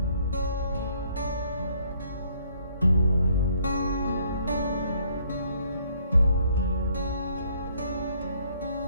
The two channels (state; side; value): inverted; both; correlation -0.65